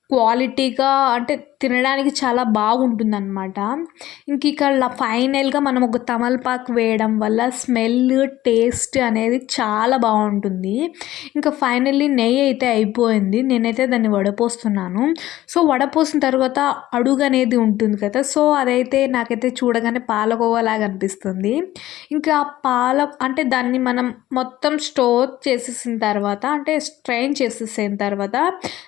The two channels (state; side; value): quieter; right; 14.9 dB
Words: క్వాలిటీగా అంటే తినడానికి చాలా బాగుంటుందన్నమాట. ఇంక ఇక్కడ ఫైనల్గా మనం ఒక తమలపాకు వేయడం వల్ల స్మెల్ టేస్ట్ అనేది చాలా బాగుంటుంది. ఇంకా ఫైనల్లీ నెయ్యి అయితే అయిపోయింది, నేనైతే దాన్ని వడపోస్తున్నాను. సో వడపోసిన తర్వాత అడుగు అనేది ఉంటుంది కదా, సో అదైతే నాకైతే చూడగానే పాలకోవాలాగా అనిపిస్తుంది. ఇంకా అంటే దాన్ని మనం మొత్తం స్టోర్ చేసేసిన తర్వాత అంటే స్ట్రెయిన్ చేసేసిన తర్వాత